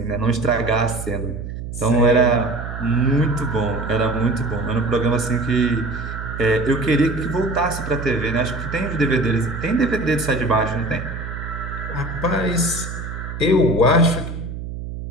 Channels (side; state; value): right; noise; hum, 8 dB below the sound